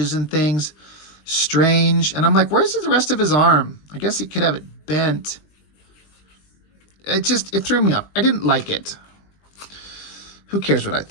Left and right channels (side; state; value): right; late; 20 ms